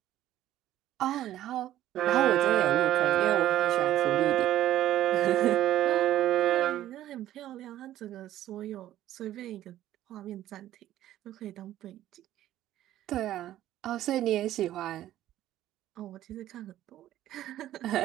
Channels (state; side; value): quieter; left; 13.2 dB